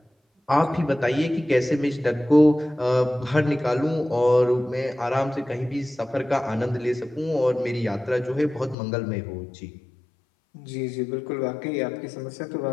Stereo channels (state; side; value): drops out; right; at 8.8 s